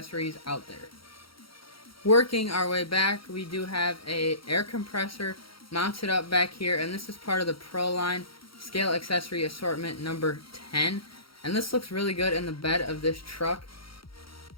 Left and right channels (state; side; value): late; right; 0.74 ms